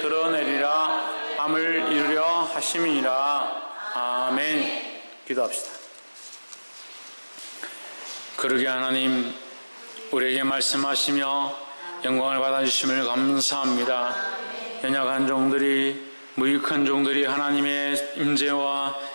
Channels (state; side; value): inverted; both; correlation -1.00